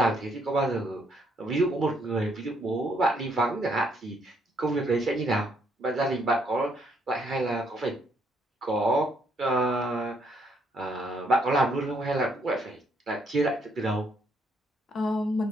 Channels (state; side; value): normal; both; correlation 0.71